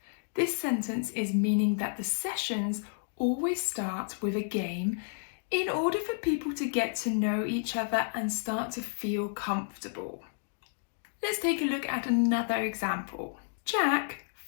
This sentence is meaning that the sessions always start with a game in order for people to get to know each other and start to feel comfortable. Let's take a look at another example. Jack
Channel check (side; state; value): right; silent; digital silence